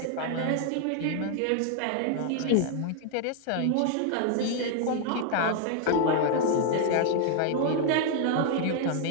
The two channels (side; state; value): both; different; correlation 0.00